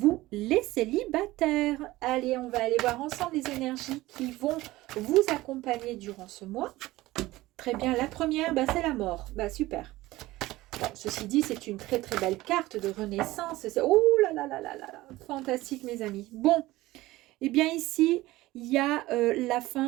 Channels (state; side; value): quieter; left; 18.1 dB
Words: les célibataires. Allez, on va aller voir ensemble les énergies qui vont vous accompagner durant ce mois. Très bien, la première, c'est la mort. Super. Bon, ceci dit, c'est une très très belle carte de renaissance. Oh là là là là là là, fantastique mes amis. Bon. Eh bien ici, il y a la